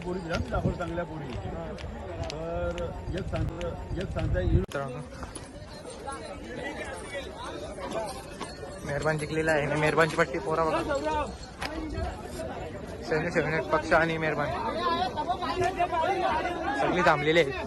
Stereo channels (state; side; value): identical; both; correlation 1.00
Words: दाखवलं चांगल्या पोळी. तर एक सांगता येईल. मेहरबान जिंकलेला आहे. मेहरबानची पट्टी पोरा बघा. सैन्य पक्ष आणि मेहरबान सगळी थांबलेली आहे.